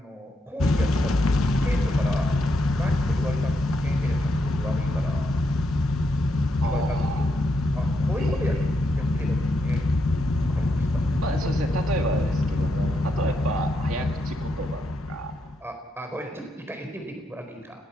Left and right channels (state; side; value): normal; both; correlation 0.81